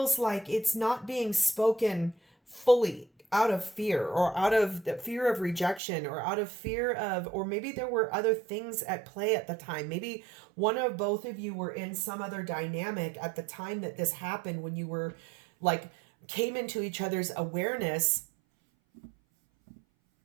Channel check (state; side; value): drops out; left; at 5.8 s